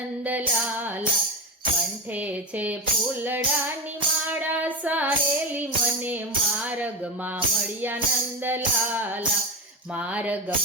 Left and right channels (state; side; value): normal; both; correlation 0.17